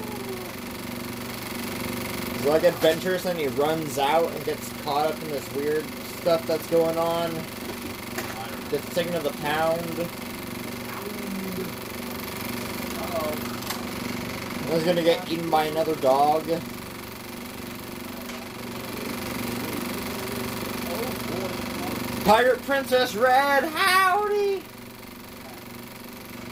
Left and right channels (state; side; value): noise; left; rumble, 27 dB below the sound